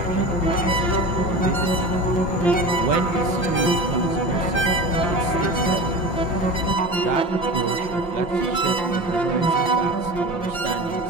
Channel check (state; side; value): late; right; 5.8 ms